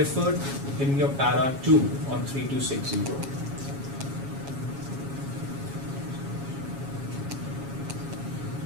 in your para 2 on 3260.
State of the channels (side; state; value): left; late; 7.2 ms